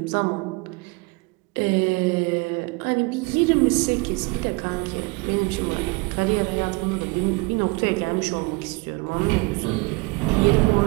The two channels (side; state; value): left; quieter; 26.8 dB